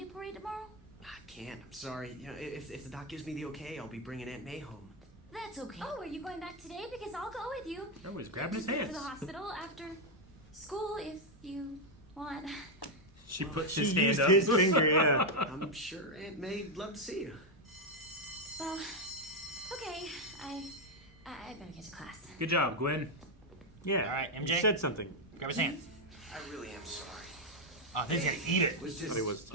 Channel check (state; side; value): normal; both; correlation 0.02